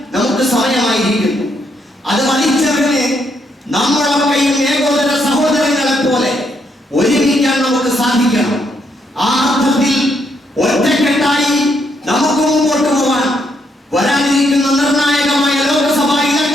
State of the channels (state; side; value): normal; both; correlation 0.75